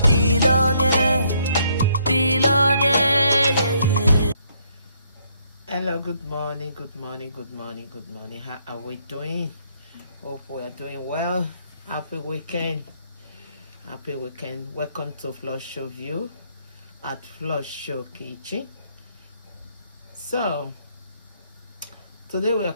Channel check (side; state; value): both; inverted; correlation -0.70